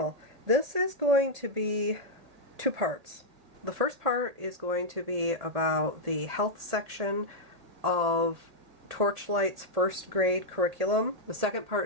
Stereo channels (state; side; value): late; left; 1.8 ms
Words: This is going to be two parts. The first part is going to be about the health section of Torchlight's first grade curriculum. The second